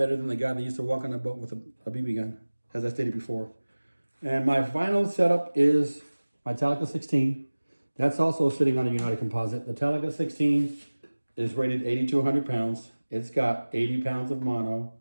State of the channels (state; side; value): inverted; both; correlation -1.00